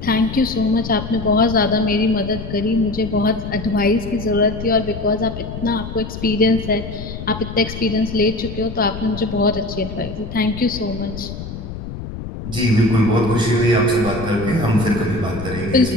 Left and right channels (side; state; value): left; noise; rumble, 9 dB below the sound